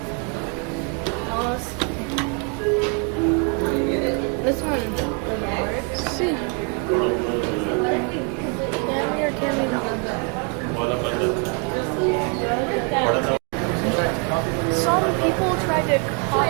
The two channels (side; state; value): left; quieter; 37.7 dB